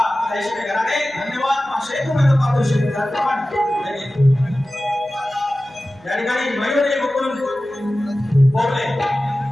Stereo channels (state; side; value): noise; right; hum, 28 dB below the sound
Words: ताई शेट्टी घराणे धन्यवाद। 500 रुपयाचा पारितोषिक या ठिकाणी मयूरी मुकुंद बोबले